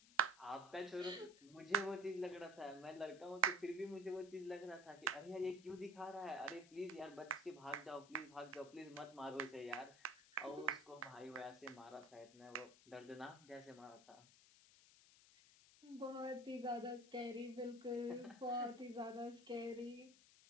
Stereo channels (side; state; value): left; noise; hiss, 22 dB below the sound